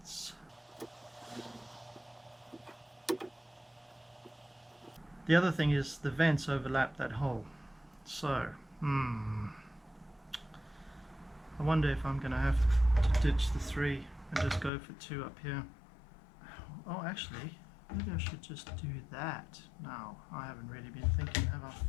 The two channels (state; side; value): drops out; right; at 14.7 s